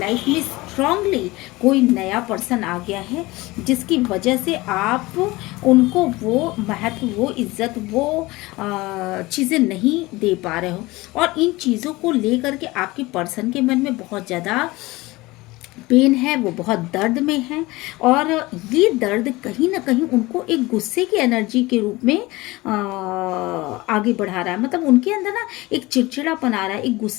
में स्ट्रांगली कोई नया पर्सन आ गया है जिसकी वजह से आप उनको वो महत्व, वो इज्जत, वो चीज़ें नहीं दे पा रहे हो। और इन चीज़ों को लेकर के आपके पर्सन के मन में बहुत ज़्यादा पेन है, वो बहुत दर्द में है, और ये दर्द कहीं ना कहीं उनको एक गुस्से की एनर्जी के रूप में आगे बढ़ा रहा है। मतलब उनके अंदर ना एक चिड़चिड़ापन आ रहा है, एक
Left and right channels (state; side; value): quieter; right; 21.0 dB